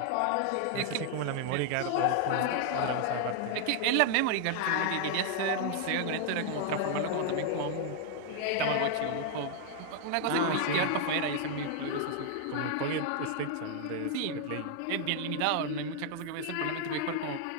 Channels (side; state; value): both; different; correlation 0.00